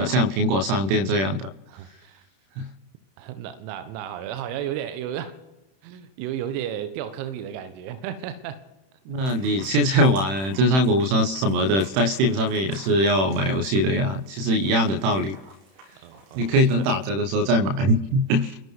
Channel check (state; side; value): late; left; 31 ms